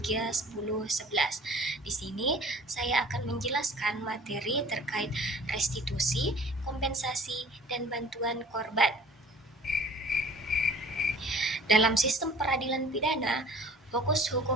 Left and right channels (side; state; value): both; normal; correlation 0.48